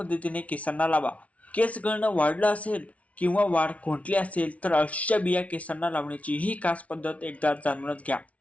केसांना लावा. केस गळणं वाढलं असेल किंवा वाढ खुंटली असेल तर अळशीच्या बिया केसांना लावण्याची ही खास पद्धत एकदा जाणूनच घ्या.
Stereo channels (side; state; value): right; late; 0.066 ms